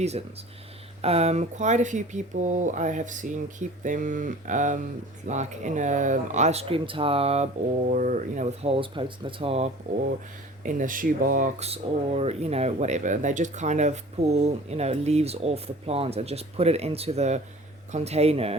Quite a few people I have seen keep them like in a ice cream tub, or with holes poked in the top, or in a shoebox, or whatever. They just kind of pull leaves off the plant and just put it into the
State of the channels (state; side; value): normal; both; correlation 0.44